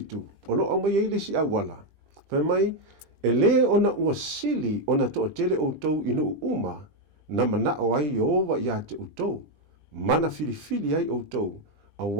o lo mai ele si awala fa mai ele ona ua sili ona to tele o tou inu uma na mana o ai Jehova ia te o tou mana filifili ai o tou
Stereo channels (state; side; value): late; left; 20 ms